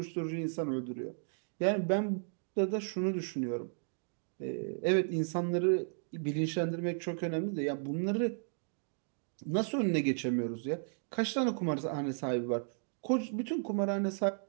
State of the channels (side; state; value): left; silent; digital silence